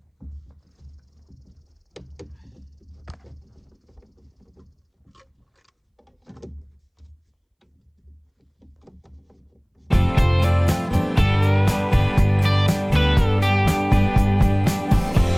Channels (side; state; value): both; identical; correlation 1.00